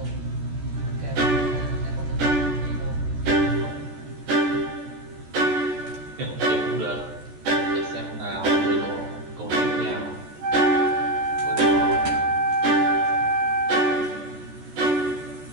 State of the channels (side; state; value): left; late; 14 ms